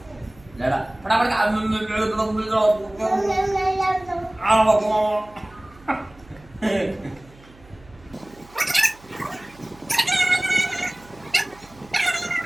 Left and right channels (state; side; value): noise; right; hum, 25 dB below the sound